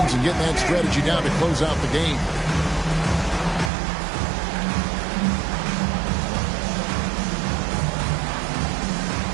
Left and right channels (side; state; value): left; drops out; at 3.7 s